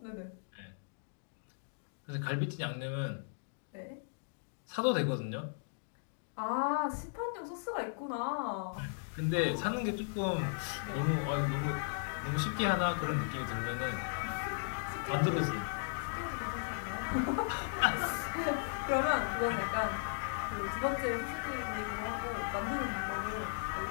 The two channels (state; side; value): silent; right; digital silence